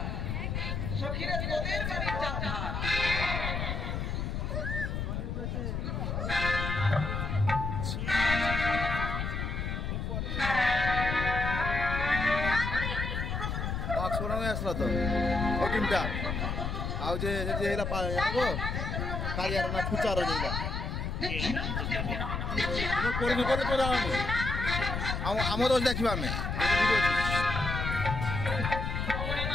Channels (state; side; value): noise; left; rumble, 2 dB below the sound